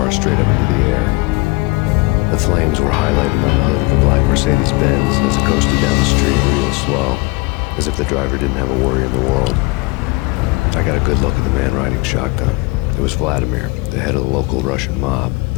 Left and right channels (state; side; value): quieter; right; 25.7 dB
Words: straight up into the air. The flames were highlighted on the hood of a black Mercedes-Benz as it coasted down the street real slow, as if the driver didn't have a worry in the world. I got a good look at the man riding shotgun. It was Vladimir, the head of the local Russian mob,